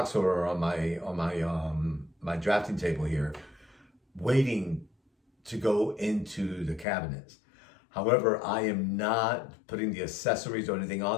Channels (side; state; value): right; drops out; at 6.9 s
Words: or on my drafting table here, waiting to go into the cabinets. However, I am not putting the accessories or anything